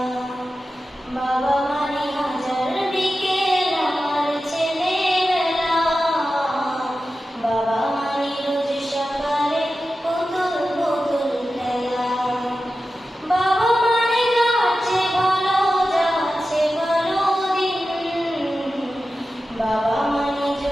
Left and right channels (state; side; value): normal; both; correlation 0.93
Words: বাবা মানে হাজার বিকেল আমার ছেলেবেলা, বাবা মানে রোজ সকালে পুতুল পুতুল খেলা। বাবা মানে যাচ্ছে ভালো, যাচ্ছে ভালো দিন, বাবা মানে